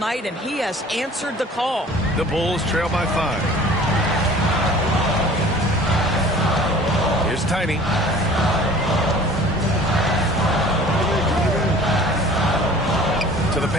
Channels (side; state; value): both; normal; correlation 0.48